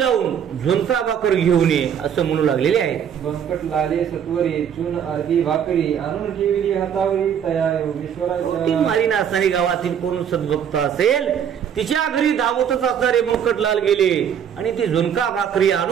झुणका भाकर घेऊन ये असं म्हणू लागलेले आहे. बंकटलाले सत्वरी चून अर्धी भाकरी आणून ठेवली हातावरी, तया योगेश्वराच्या. मारीना असणारी गावातील कोण सद्भक्त असेल तिच्या घरी धावतच असणारे बंकटलाल गेले आणि ती झुणका भाकरी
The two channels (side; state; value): left; quieter; 8.5 dB